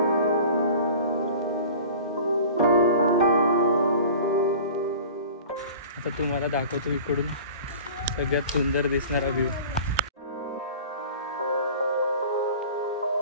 आता तुम्हाला दाखवतो इकडून सगळ्यात सुंदर दिसणारा व्ह्यू.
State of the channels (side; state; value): both; inverted; correlation -0.41